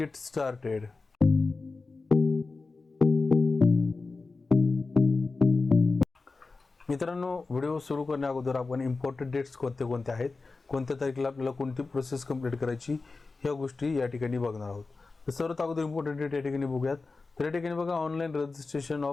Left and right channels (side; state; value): right; quieter; 3.9 dB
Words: started. मित्रांनो, व्हिडिओ सुरू करण्या अगोदर आपण इम्पॉर्टंट डेट्स कोणते कोणते आहेत, कोणत्या तारखेला आपल्याला कोणती प्रोसेस कंप्लीट करायची, ह्या गोष्टी या ठिकाणी बघणार आहोत. तर सर्वात अगोदर इम्पॉर्टंट डेट या ठिकाणी बघूयात. तर या ठिकाणी बघा, online registration